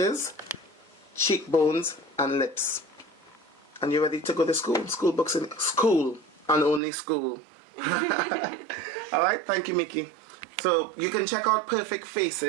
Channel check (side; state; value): left; drops out; at 6.8 s